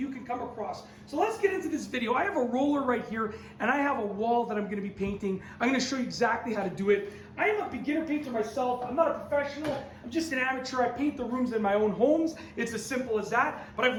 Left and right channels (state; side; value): identical; both; correlation 1.00